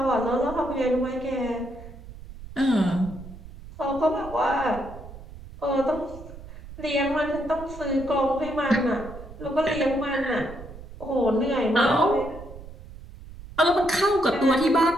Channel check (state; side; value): noise; right; rumble, 15 dB below the sound